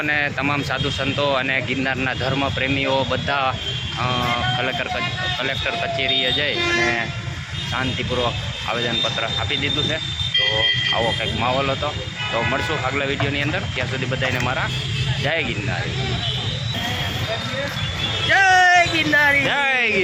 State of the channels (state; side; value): identical; both; correlation 1.00